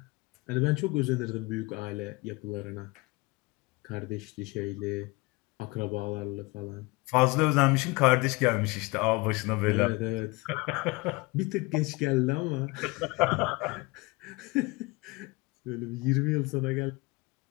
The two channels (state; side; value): quieter; right; 24.8 dB